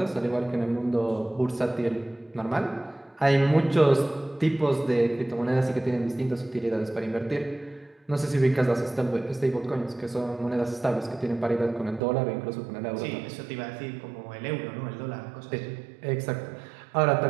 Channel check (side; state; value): left; drops out; at 12.0 s